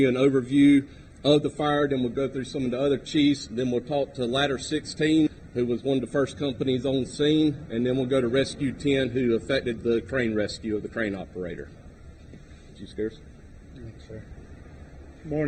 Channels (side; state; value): both; identical; correlation 1.00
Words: an overview of the fire, then we'll go through some of the other chiefs, then we'll talk to Ladder 16, who was one of the first companies on scene, and then we'll go to Rescue 10, who affected the crane rescue of the crane operator. Chief Scares. Thanks, sir.